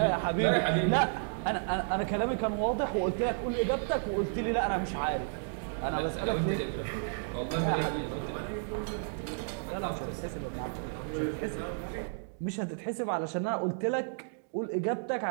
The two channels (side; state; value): left; silent; digital silence